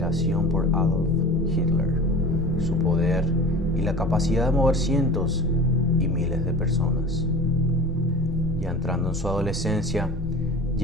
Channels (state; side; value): normal; both; correlation 0.38